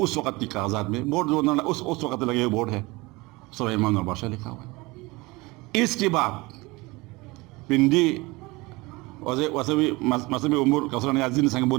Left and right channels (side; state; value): left; quieter; 23.2 dB